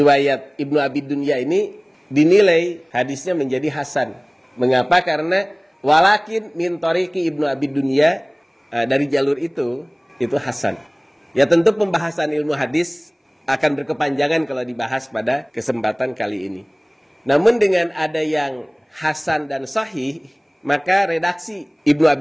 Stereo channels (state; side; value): identical; both; correlation 1.00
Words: Ibnu Abi Dunya ini dinilai hadisnya menjadi Hasan. Mengapa? Karena walakin min tariqi Ibnu Abi Dunya, dari jalur itu Hasan. Ya, tentu pembahasan ilmu hadis akan berkepanjangan kalau dibahas pada kesempatan kali ini. Namun dengan ada yang hasan dan sahih, maka redaksi Ibnu